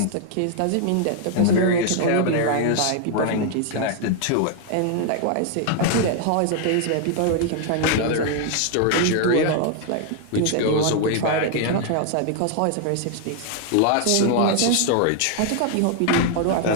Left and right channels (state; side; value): different; both; correlation 0.00